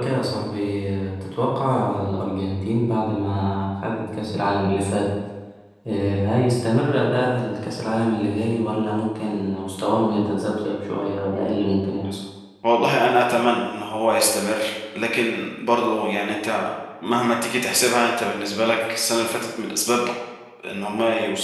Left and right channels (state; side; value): identical; both; correlation 1.00